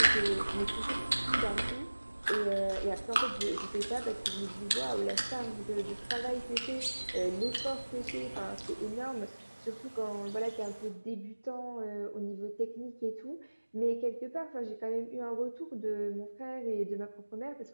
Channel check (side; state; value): both; inverted; correlation -1.00